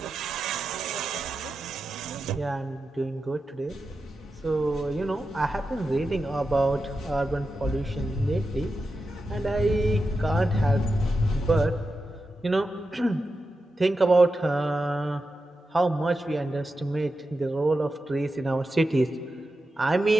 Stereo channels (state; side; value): normal; both; correlation 0.90